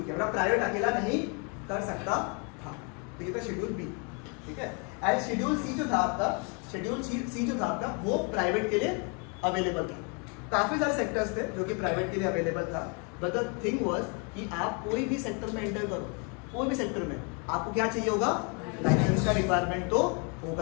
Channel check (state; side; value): quieter; right; 35.7 dB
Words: किया, मतलब प्राइवेट अकेला नहीं कर सकता था। तो ये था शेड्यूल बी, ठीक है। एंड शेड्यूल सी जो था आपका, शेड्यूल सी जो था आपका वो प्राइवेट के लिए अवेलेबल था, काफी सारे सेक्टर्स थे जो कि प्राइवेट के लिए अवेलेबल था, बट द थिंग वाज कि आप कोई भी सेक्टर में एंटर करो, कोई भी सेक्टर में आपको क्या चाहिए होगा, लाइसेंस का रिक्वायरमेंट तो